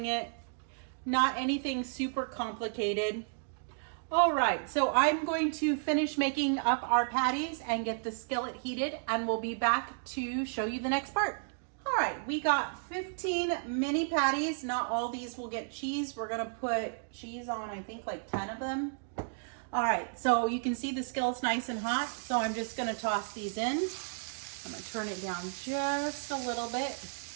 it. Not anything super complicated. All right, so I'm going to finish making up our patties and get the skillet heated, and we'll be back to show you the next part. All right, we got 15 mini patties. Not all these will get cheese. We're gonna put cheese on, I think, like 10 of them. All right, so you can see the skillet's nice and hot, so I'm just gonna toss these in. I'm gonna turn it down just a little bit.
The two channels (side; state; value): left; silent; digital silence